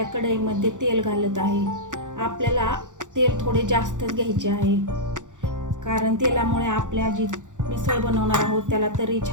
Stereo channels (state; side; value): late; left; 0.86 ms